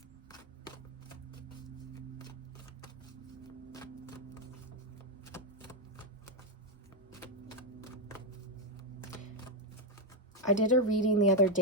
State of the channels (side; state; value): both; normal; correlation 0.03